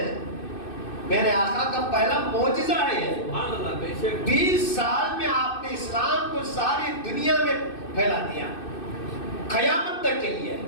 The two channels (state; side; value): late; right; 2.6 ms